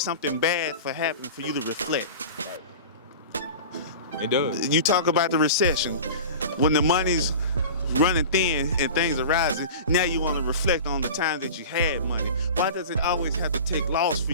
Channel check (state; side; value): inverted; both; correlation -0.35